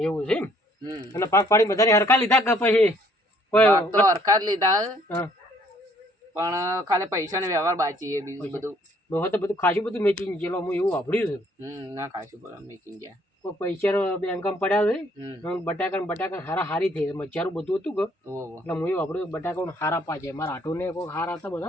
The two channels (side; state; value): both; normal; correlation 0.63